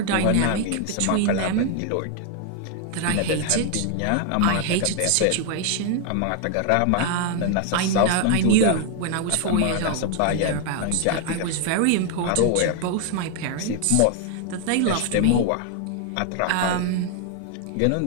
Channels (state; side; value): different; both; correlation 0.00